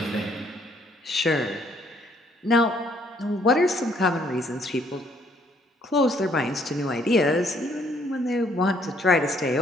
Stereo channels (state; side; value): normal; both; correlation 0.66